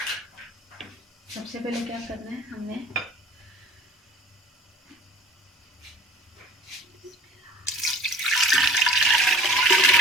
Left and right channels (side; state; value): both; normal; correlation 0.46